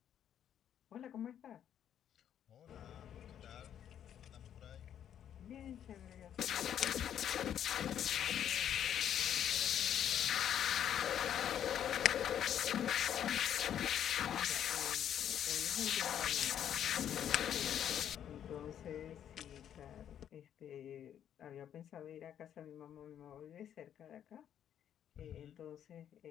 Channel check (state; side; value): quieter; right; 9.8 dB